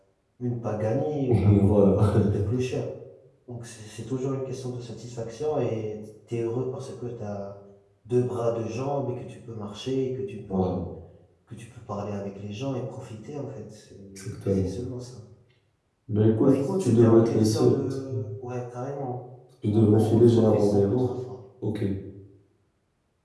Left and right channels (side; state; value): both; identical; correlation 1.00